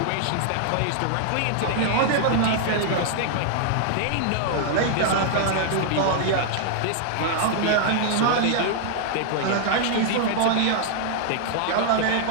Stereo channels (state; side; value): different; both; correlation -0.01